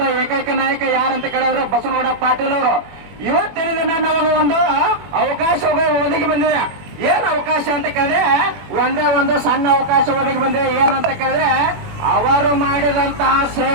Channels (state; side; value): late; left; 21 ms